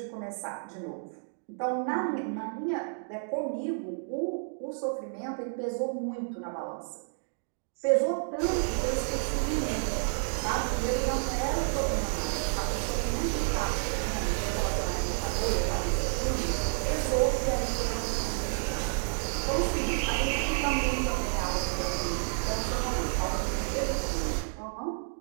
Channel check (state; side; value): silent; left; digital silence